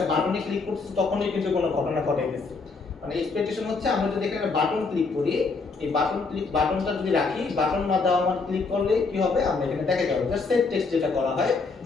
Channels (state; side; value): quieter; right; 4.3 dB